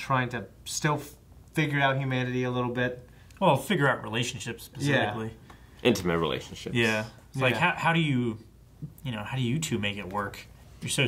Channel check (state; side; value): identical; both; correlation 1.00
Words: to still figure out humanity a little bit. Well, figure out relationships specifically. Intimate relationships. Yeah. It's like, Yeah. how do you two make it work? You're so